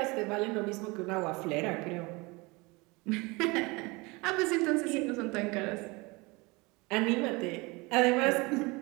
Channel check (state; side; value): quieter; left; 25.3 dB